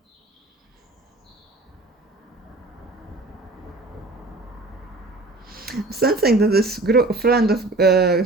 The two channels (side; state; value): left; quieter; 3.0 dB